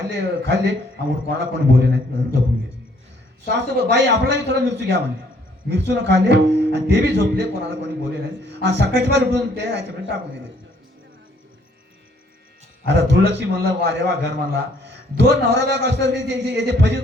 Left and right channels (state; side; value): normal; both; correlation 0.64